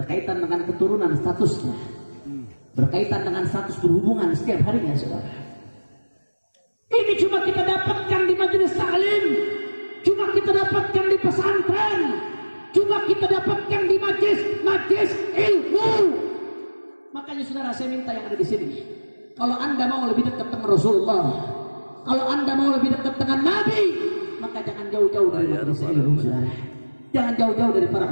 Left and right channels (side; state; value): both; inverted; correlation -1.00